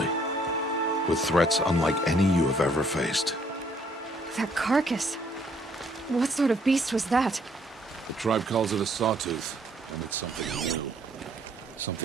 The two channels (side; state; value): both; normal; correlation 0.65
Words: with threats unlike any you have ever faced. That carcass. What sort of beast was that? The tribe calls it a sawtooth, and it's something new.